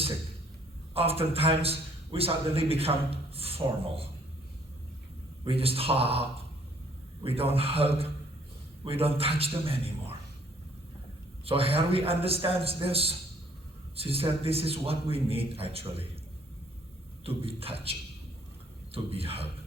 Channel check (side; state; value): both; normal; correlation 0.62